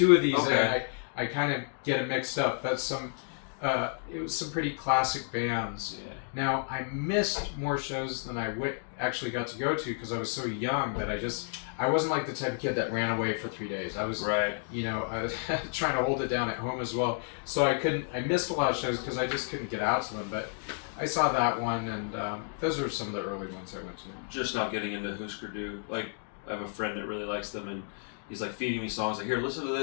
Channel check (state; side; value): silent; right; 57 dB below the other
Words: of these, and I kind of get them mixed up. But it was some pretty classic bands. Yeah. Now, I missed more shows than I actually got to go to because I was so young that I wasn't like the type of kid that ran away for 3 days. I was, I was trying to hold it down at home as well. So I missed a lot of shows because I just couldn't get out to them. But I saw that one, and those are some of the early ones I went to. Just not getting into Husker Du. Like, I have a friend that really likes them, and he's like feeding me songs like, here, listen to